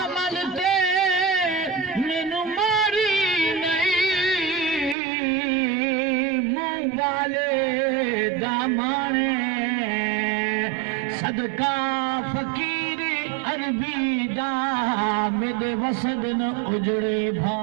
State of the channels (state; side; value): drops out; left; at 5.0 s